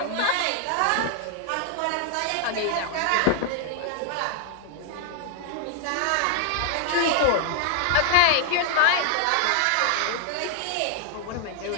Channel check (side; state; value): both; different; correlation 0.00